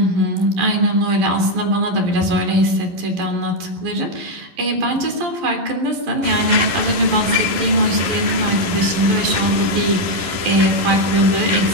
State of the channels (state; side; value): late; left; 11 ms